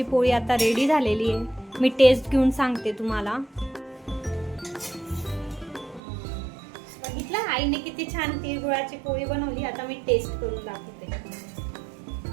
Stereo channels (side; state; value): left; drops out; at 6.0 s